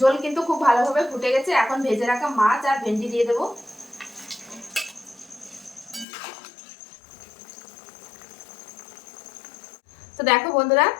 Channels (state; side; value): drops out; right; at 6.1 s